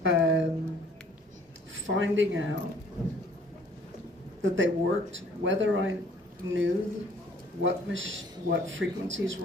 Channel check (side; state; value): both; normal; correlation 0.57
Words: finding out that they worked, whether I knew what frequencies